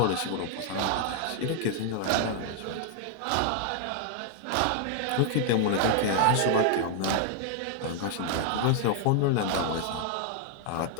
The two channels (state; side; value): different; both; correlation 0.00